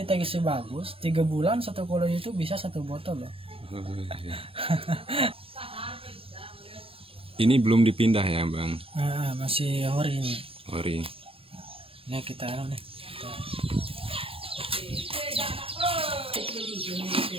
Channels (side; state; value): left; late; 0.27 ms